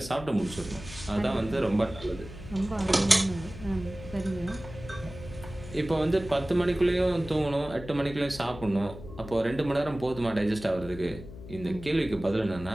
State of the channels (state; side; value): noise; left; hum, 14 dB below the sound